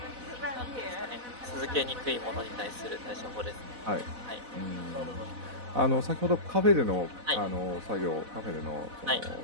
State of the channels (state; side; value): late; left; 4.0 ms